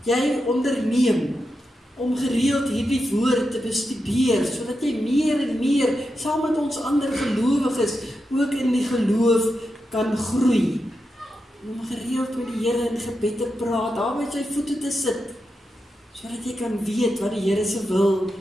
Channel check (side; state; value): both; normal; correlation 0.88